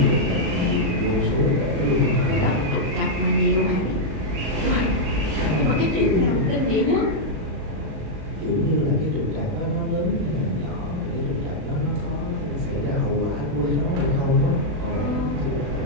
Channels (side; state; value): left; late; 37 ms